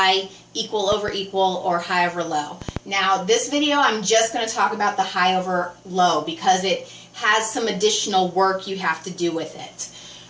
equal over equal, or high over low. Now this video I'm just going to talk about the high over low because it has some additional work you have to do with it.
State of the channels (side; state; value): both; identical; correlation 1.00